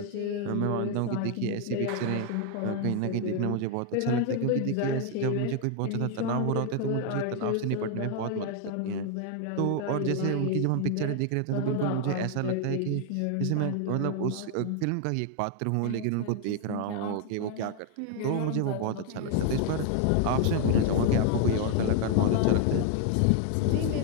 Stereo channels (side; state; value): both; different; correlation 0.01